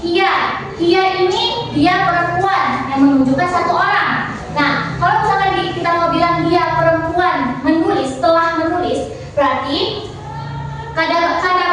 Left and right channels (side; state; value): both; identical; correlation 1.00